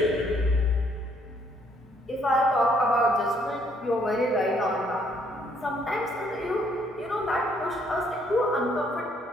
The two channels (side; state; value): both; normal; correlation 0.67